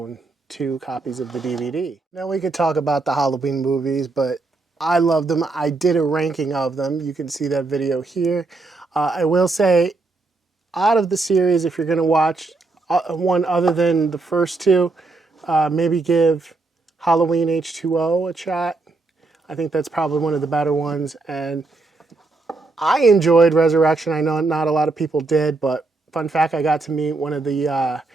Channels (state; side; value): quieter; left; 3.6 dB